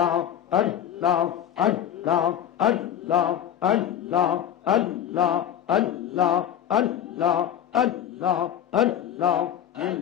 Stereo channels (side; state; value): right; quieter; 10.1 dB